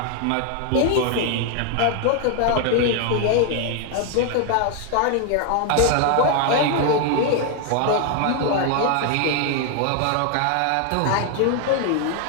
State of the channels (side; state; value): both; different; correlation 0.00